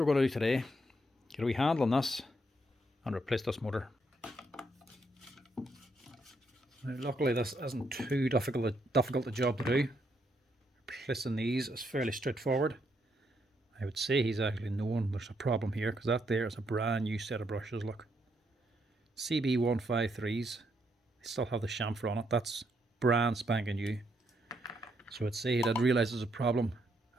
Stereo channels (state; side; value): normal; both; correlation 0.76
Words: we're going to do today. Get a wee handle on this and replace this motor. Now, luckily this isn't too difficult a job to do. Replacing these is fairly straightforward. I would say he's actually known there's a problem here, because that there is a brand new set of brushes. Look, CB153s. They still have the chamfer on it. That's brand spanking new. So I'd say he did realise there's a problem,